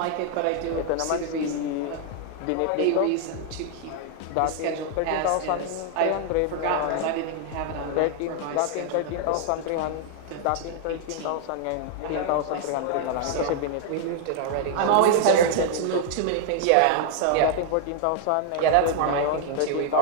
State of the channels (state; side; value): different; both; correlation 0.00